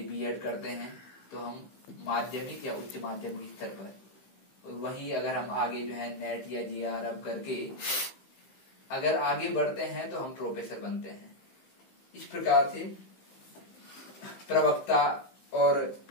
बीएड करते हैं तो हम माध्यमिक या उच्च माध्यमिक स्तर पर। वही अगर हम आगे जो है नेट या जीआरएफ करके अगर आगे बढ़ते हैं तो हम प्रोफेसर बनते हैं। इस प्रकार से प्रवक्ता और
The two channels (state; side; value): late; right; 15 ms